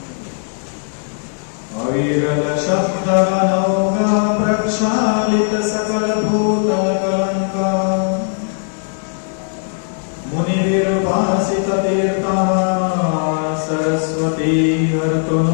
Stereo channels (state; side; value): silent; right; 61 dB below the other